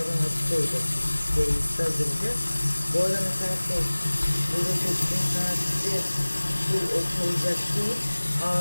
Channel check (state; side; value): inverted; both; correlation -1.00